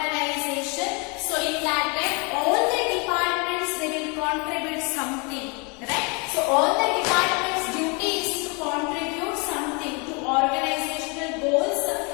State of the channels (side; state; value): right; quieter; 31.9 dB